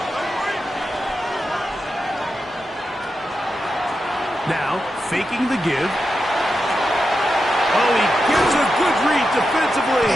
Now, faking the give. Oh, he gets a good read defensively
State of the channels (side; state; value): both; normal; correlation 0.89